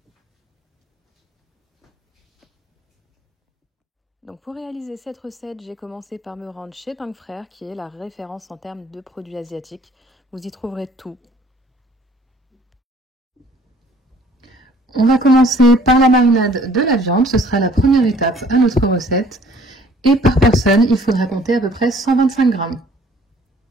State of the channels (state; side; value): normal; both; correlation 0.56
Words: Donc pour réaliser cette recette, j'ai commencé par me rendre chez Tang Frères, qui est la référence en termes de produits asiatiques. Vous y trouverez tout. On va commencer par la marinade de la viande, ce sera la première étape à notre recette. Et par personne, il faudra compter à peu près 125 grammes.